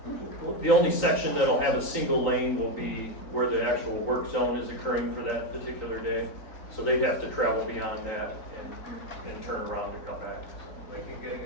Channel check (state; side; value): late; right; 4.0 ms